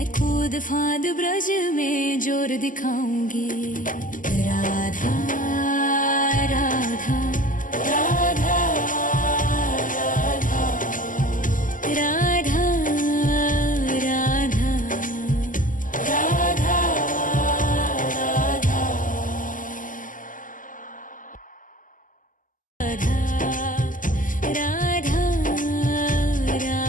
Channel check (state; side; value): late; right; 0.38 ms